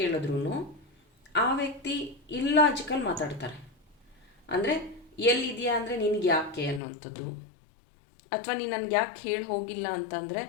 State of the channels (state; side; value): drops out; right; at 6.8 s